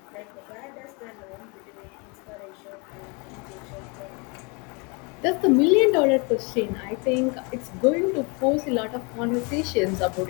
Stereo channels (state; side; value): quieter; right; 31.5 dB